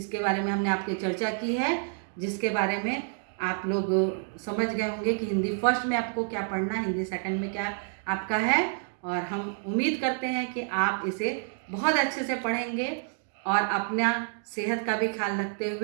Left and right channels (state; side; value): silent; left; 59 dB below the other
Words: बारे में हमने आपके चर्चा की है, जिसके बारे में आप लोग समझ गए होंगे कि हिंदी फर्स्ट में आपको क्या पढ़ना है, हिंदी सेकंड में क्या आपका है। और हम उम्मीद करते हैं कि आप इसे बहुत अच्छे से पढ़ेंगे और अपना सेहत का भी ख्याल रखते